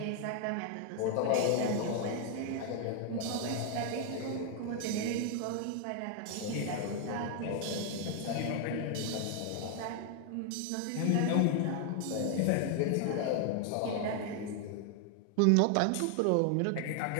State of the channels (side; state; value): both; different; correlation 0.00